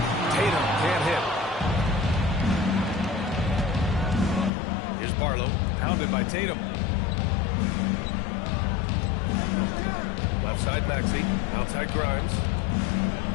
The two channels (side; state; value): right; drops out; at 4.5 s